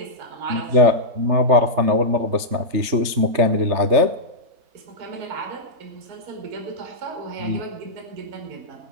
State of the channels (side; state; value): left; late; 3.4 ms